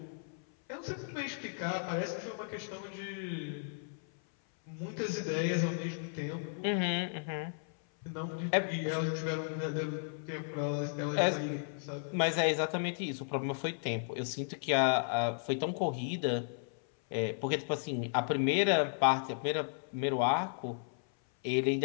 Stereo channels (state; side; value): silent; right; 55 dB below the other